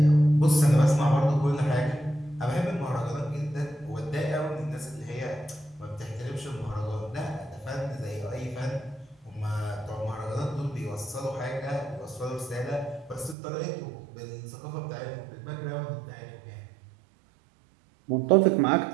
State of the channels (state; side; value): drops out; left; at 13.4 s